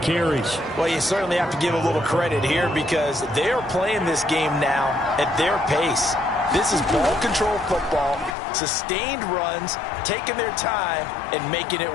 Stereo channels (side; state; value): right; drops out; at 8.3 s